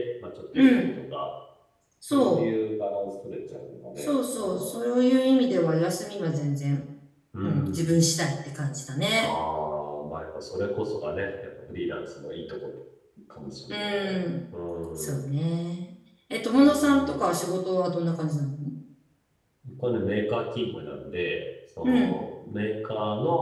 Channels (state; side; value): identical; both; correlation 1.00